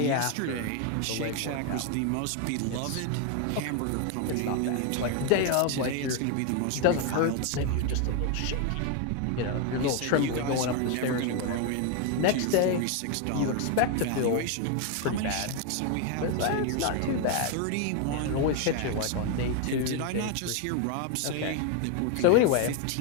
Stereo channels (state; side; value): different; both; correlation 0.01